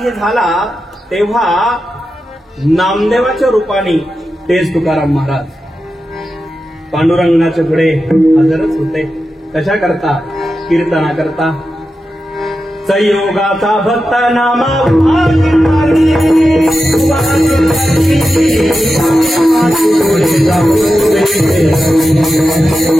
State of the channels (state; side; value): normal; both; correlation 0.91